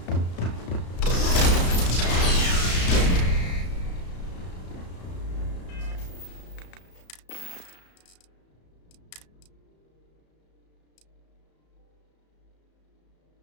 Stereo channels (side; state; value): right; late; 34 ms